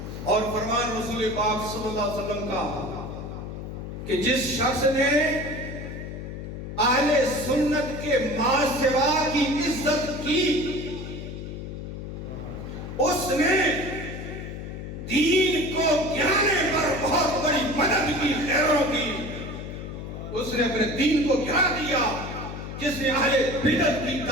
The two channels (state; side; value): noise; left; hum, 8 dB below the sound